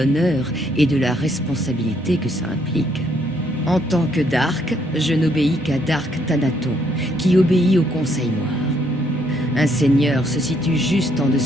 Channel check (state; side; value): normal; both; correlation 0.70